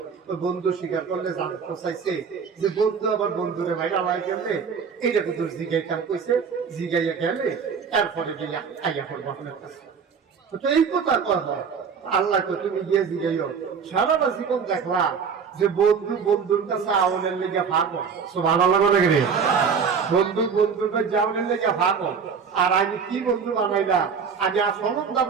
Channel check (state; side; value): quieter; left; 6.1 dB